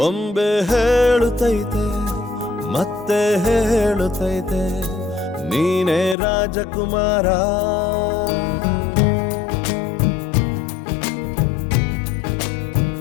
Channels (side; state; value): right; drops out; at 6.2 s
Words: ಬೊಂಬೆ ಹೇಳುತ್ತೈತೆ ಮತ್ತೆ ಹೇಳುತ್ತೈತೆ ನೀನೇ ರಾಜಕುಮಾರ.